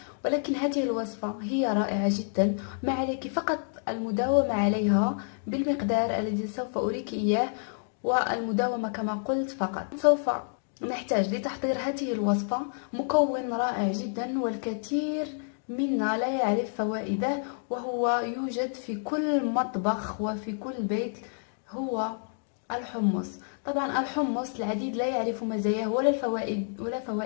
ولكن هذه الوصفة هي رائعة جدا. ما عليك فقط المداومة عليها بالمقدار الذي سوف أريك إياه، والمداومة كما قلت فقط. سوف نحتاج لتحضير هذه الوصفة مكون رائع جدا والكثير منا لا يعرف فوائده، وهو يوجد في كل مطبخ وفي كل بيت، هو الحمص. طبعا الحمص العديد لا يعرف مزاياه ولا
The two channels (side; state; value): right; silent; digital silence